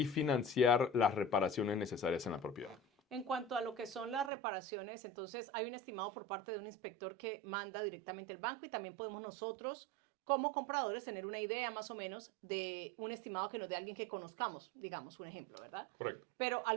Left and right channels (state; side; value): drops out; left; at 4.3 s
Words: financiar las reparaciones necesarias en la propiedad. En cuanto a lo que son las reparaciones, entonces hay un estimado por parte de un inspector que manda directamente el banco, y también podemos nosotros como compradores tener una idea más o menos de un estimado que nos dé alguien que conozcamos, digamos un ejemplo, ¿verdad? Correcto. Pero